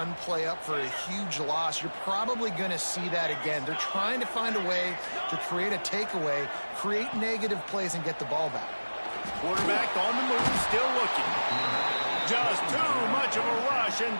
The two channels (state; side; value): inverted; both; correlation -1.00